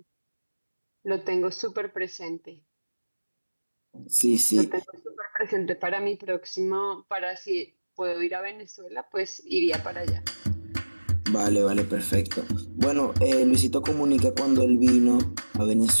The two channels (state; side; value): inverted; both; correlation -1.00